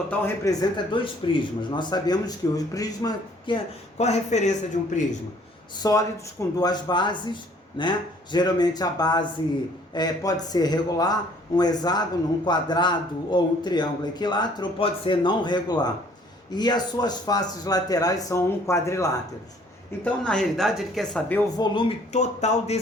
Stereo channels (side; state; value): both; normal; correlation 0.59